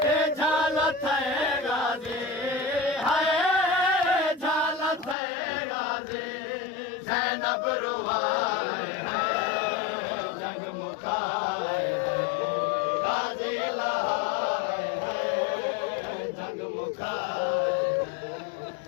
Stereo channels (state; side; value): drops out; right; at 5.2 s